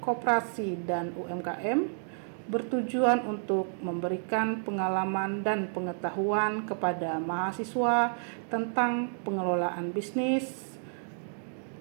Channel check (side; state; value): left; silent; digital silence